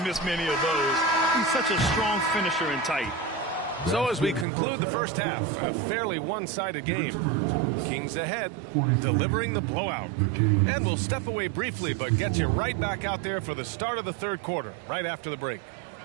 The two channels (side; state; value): left; drops out; at 4.5 s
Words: miss many of those. He's such a strong finisher and tight. So as we conclude the first half, a fairly one-sided game. Kings ahead, delivering the blowout. And we'll step away briefly, but get you right back out there for the start of the third quarter, right after the break.